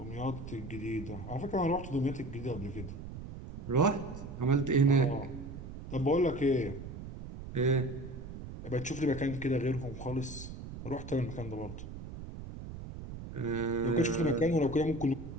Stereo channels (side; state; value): right; noise; rumble, 10 dB below the sound